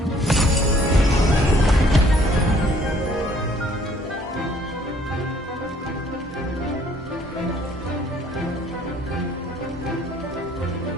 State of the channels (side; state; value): both; normal; correlation 0.60